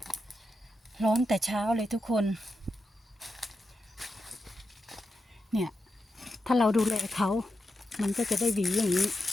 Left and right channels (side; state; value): both; normal; correlation 0.88